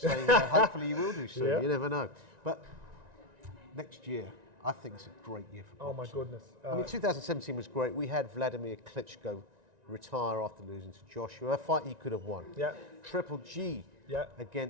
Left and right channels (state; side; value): late; left; 1.9 ms